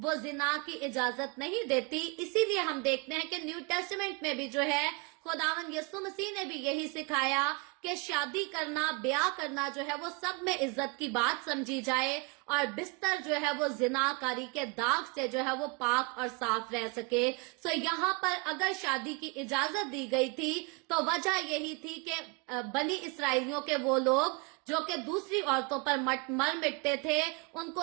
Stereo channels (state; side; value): quieter; left; 28.8 dB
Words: जिना की इजाजत नहीं देती। इसीलिए हम देखते हैं कि न्यू टेस्टामेंट में भी जो है खुदावन यीशु मसीह ने भी यही सिखाया کہ شادی کرنا، بیاہ کرنا جو ہے وہ سب میں عزت کی بات سمجھی جائے اور بستر جو ہے وہ زنا کاری کے داغ سے جو ہے وہ پاک اور صاف رہ سکے۔ یہاں پر اگر شادی کی اجازت دی گئی تھی تو وجہ یہی تھی کہ بنی اسرائیلیوں کے وہ لوگ جو کہ دوسری عورتوں پر مر مٹتے تھے، ان